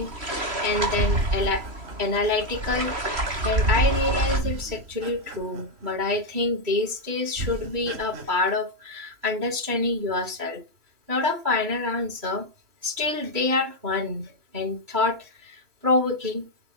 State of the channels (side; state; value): left; late; 3.0 ms